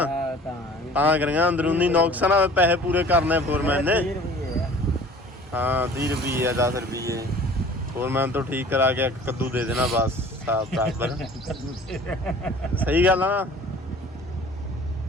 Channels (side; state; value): both; normal; correlation 0.47